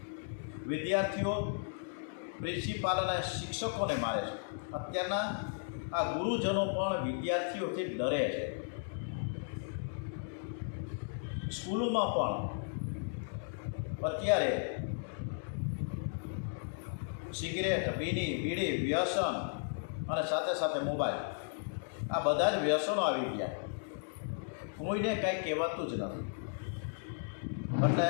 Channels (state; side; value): silent; right; digital silence